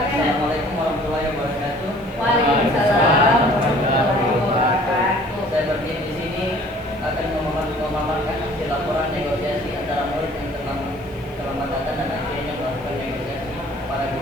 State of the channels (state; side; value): noise; right; hiss, 30 dB below the sound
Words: warahmatullahi wabarakatuh. Waalaikumsalam warahmatullahi wabarakatuh. Saya berdiri di sini akan memaparkan hasil laporan negosiasi antara murid yang terlambat datang dan akhirnya melakukan negosiasi para